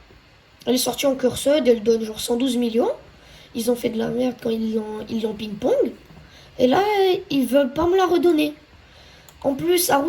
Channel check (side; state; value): both; identical; correlation 1.00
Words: Elle est sortie en curseur, elle donne genre 112 millions. Ils ont fait de la merde quand ils l'ont ping-pong. Et là, ils veulent pas me la redonner. En plus,